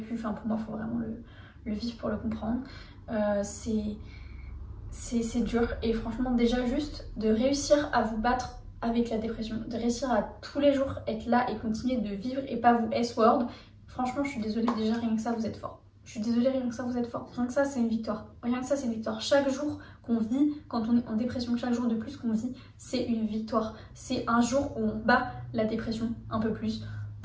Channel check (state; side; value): identical; both; correlation 1.00